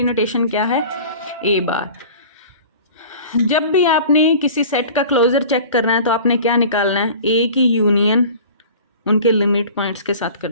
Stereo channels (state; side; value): inverted; both; correlation -0.41